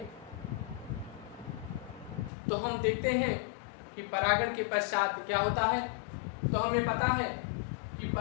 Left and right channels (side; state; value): right; drops out; at 2.3 s